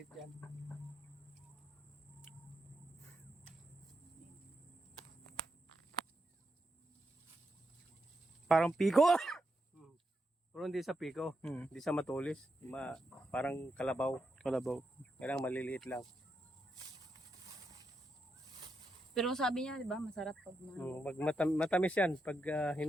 yan. Parang piko. Pero hindi sa piko, Hmm. hindi sa matulis. Parang kalabaw. Kalabaw. Kailangan maliliit lang. Pero sabi niya, di ba, masarap pag, Matamis yan pag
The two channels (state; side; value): normal; both; correlation 0.84